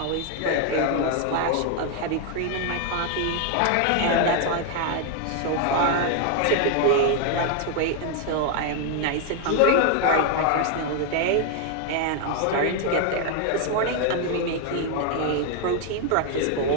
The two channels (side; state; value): both; different; correlation 0.00